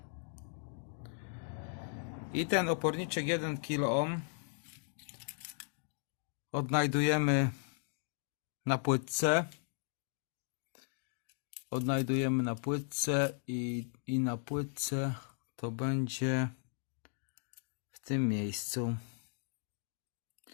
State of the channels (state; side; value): silent; right; 53 dB below the other